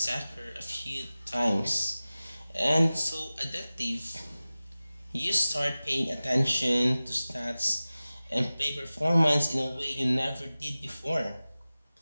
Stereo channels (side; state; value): both; inverted; correlation -0.97